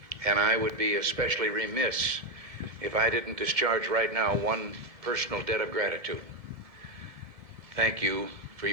And I would be especially remiss if I didn't discharge right now one personal debt of gratitude. Thank you for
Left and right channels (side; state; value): left; late; 1.7 ms